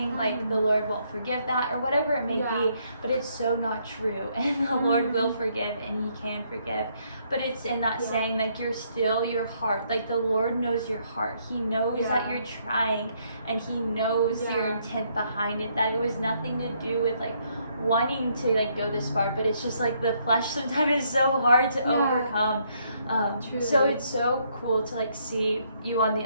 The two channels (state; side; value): inverted; both; correlation -0.71